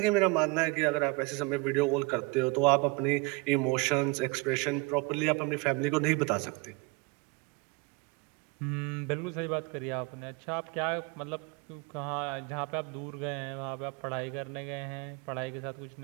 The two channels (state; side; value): quieter; left; 26.1 dB